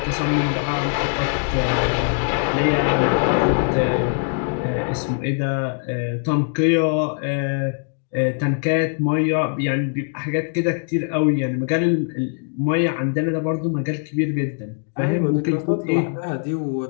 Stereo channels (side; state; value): right; silent; 55 dB below the other